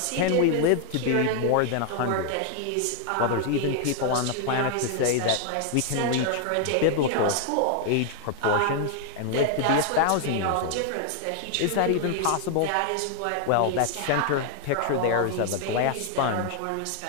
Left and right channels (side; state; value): both; different; correlation 0.00